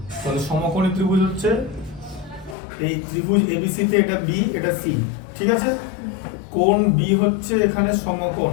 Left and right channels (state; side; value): drops out; right; at 2.6 s